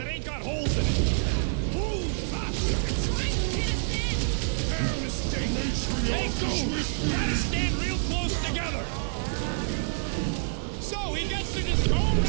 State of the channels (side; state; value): left; silent; 60 dB below the other